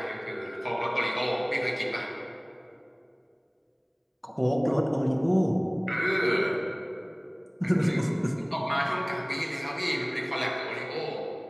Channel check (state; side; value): identical; both; correlation 1.00